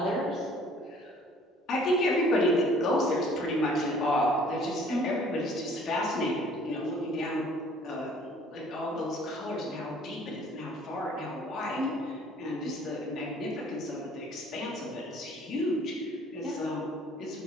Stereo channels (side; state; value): both; normal; correlation 0.55